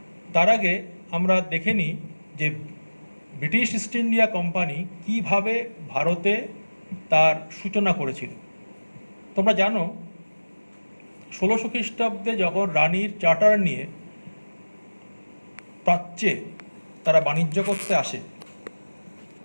তার আগে আমরা দেখে নিই যে ব্রিটিশ ইস্ট ইন্ডিয়া কোম্পানি কীভাবে ভারতে তার সূচনা করেছিল। তোমরা জানো 1600 খ্রিস্টাব্দে যখন রানীর চার্টার নিয়ে প্রাচ্যে তারা বাণিজ্য করতে আসে,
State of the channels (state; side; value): inverted; both; correlation -1.00